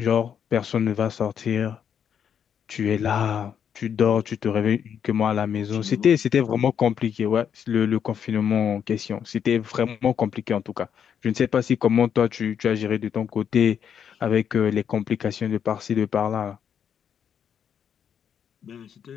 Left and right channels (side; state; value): right; quieter; 8.1 dB